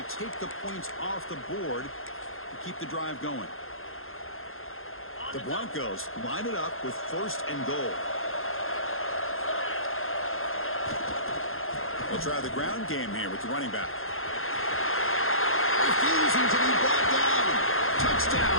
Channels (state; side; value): late; right; 0.60 ms